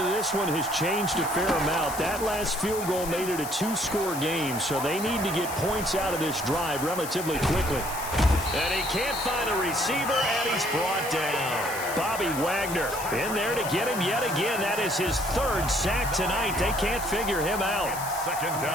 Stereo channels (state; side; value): noise; left; hiss, 9 dB below the sound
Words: of this one has changed a fair amount. That last field goal made it a 2-score game, so they need to get points out of this drive relatively quickly. And he can't find a receiver, and he's brought down. Bobby Wagner in there to get him yet again. That is his 3rd sack tonight. They can't figure him out. Second